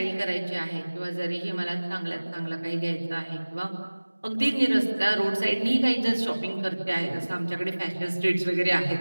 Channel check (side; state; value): both; inverted; correlation -1.00